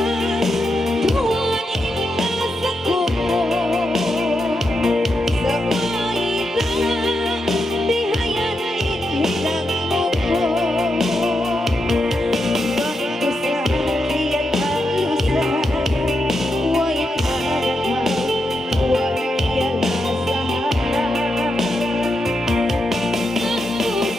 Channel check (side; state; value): both; normal; correlation 0.85